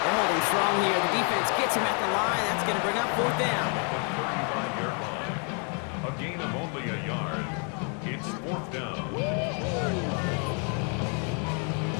They're holding strong here. The defense gets him at the line. That's going to bring up 4th down. A gain of only a yard. It's 4th down.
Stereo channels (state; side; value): quieter; right; 38.7 dB